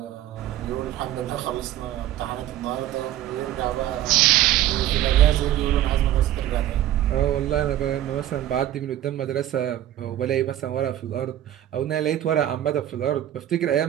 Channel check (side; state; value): left; quieter; 12.7 dB